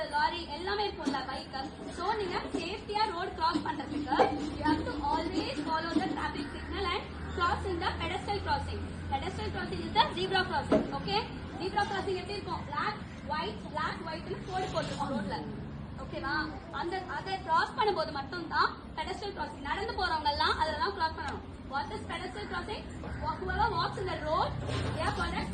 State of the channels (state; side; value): identical; both; correlation 1.00